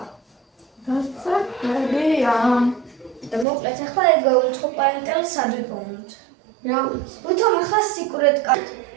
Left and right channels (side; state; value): left; drops out; at 3.5 s